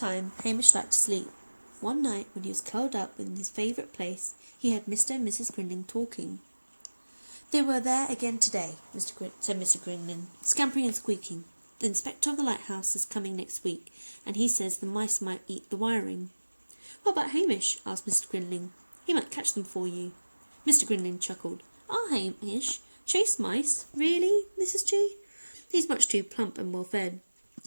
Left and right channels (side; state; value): both; inverted; correlation -1.00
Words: Hamish liked to sleep. One night, when he was curled up in his favourite place, he heard Mr. and Mrs. Grinling talking. "They were there again today," said Mr. Grinling, "scampering and squeaking. The inspector of the lighthouse is coming next week, and he says the mice might eat the wiring." "What about Hamish?" asked Mr. Grinling. "He might catch them for you." Mr. Grinling chuckled. "Our Hamish chase mice? Really, Mrs. G? He's much too plump and well-fed."